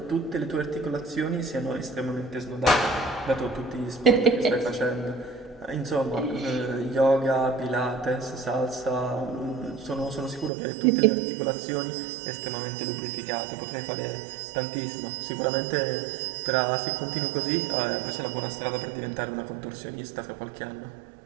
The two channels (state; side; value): drops out; left; at 10.5 s